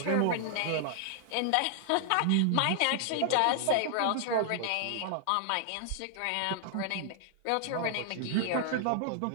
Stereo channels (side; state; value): both; different; correlation 0.00